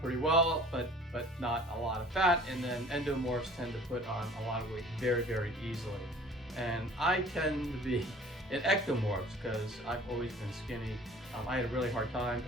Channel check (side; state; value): both; normal; correlation 0.49